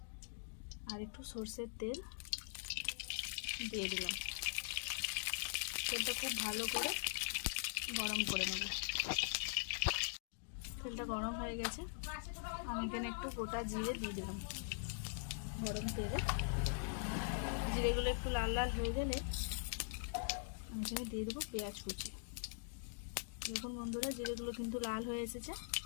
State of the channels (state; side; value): silent; right; digital silence